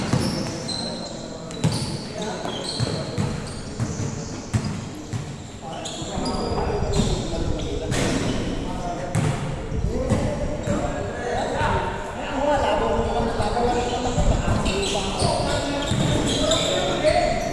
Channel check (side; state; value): both; identical; correlation 1.00